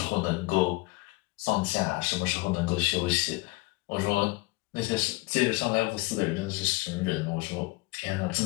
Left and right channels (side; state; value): right; quieter; 23.6 dB